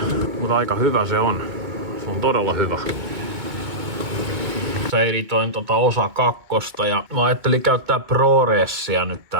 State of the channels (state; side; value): late; left; 2.2 ms